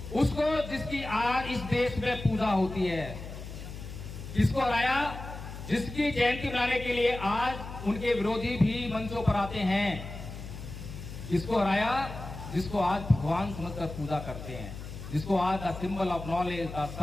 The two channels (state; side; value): noise; left; hum, 10 dB below the sound